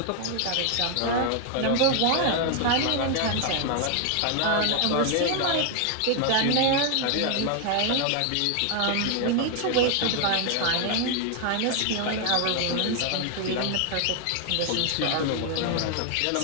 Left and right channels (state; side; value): different; both; correlation 0.00